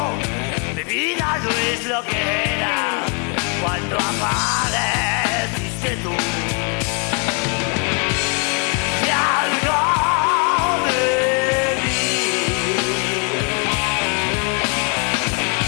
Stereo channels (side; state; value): right; quieter; 37.2 dB